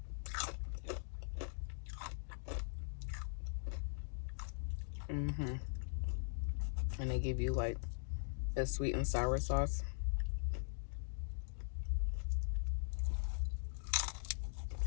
and they give you like the sweet and sour sauce.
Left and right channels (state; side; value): silent; right; digital silence